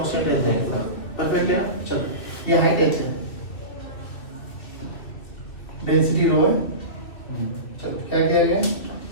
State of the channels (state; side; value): late; right; 2.3 ms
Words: रहता है। परफेक्ट है ना? चलो ये हाइट h है, डेंसिटी रो है। चलो क्या किया गया